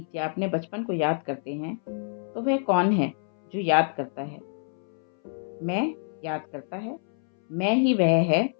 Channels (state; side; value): silent; right; 60 dB below the other